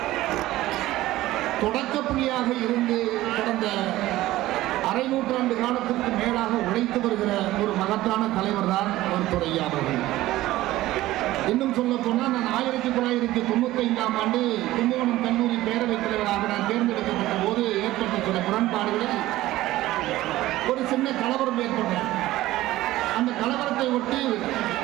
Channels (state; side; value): quieter; left; 16.3 dB